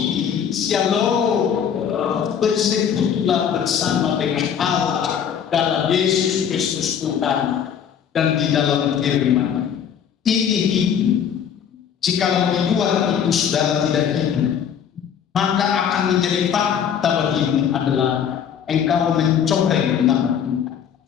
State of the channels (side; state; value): right; quieter; 8.3 dB